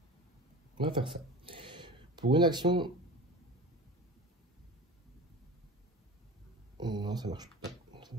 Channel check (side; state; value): both; normal; correlation 0.34